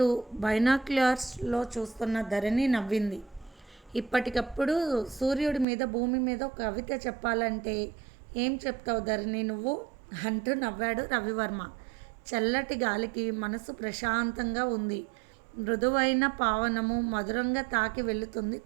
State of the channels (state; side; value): drops out; left; at 5.7 s